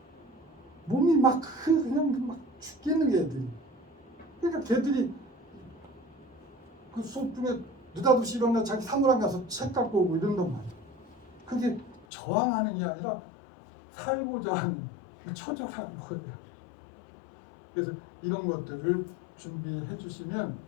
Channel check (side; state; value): right; drops out; at 12.1 s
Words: 몸이 그냥 막 죽겠는 게 애들이. 그러니까 걔들이 그 수업 중에 느닷없이 일어나 자기 사무랑 가서 책 갖고 오고 이런단 말이야. 그게 저항하는 게 아니라 살고자 하는 처절한 거예요. 그래서 이런 것들을 준비해 주시면,